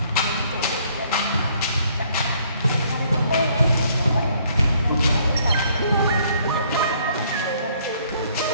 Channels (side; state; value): both; inverted; correlation -0.64